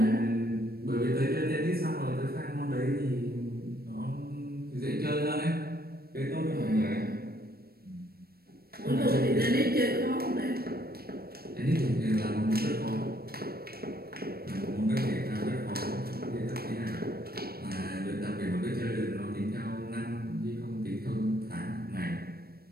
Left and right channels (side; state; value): left; late; 0.44 ms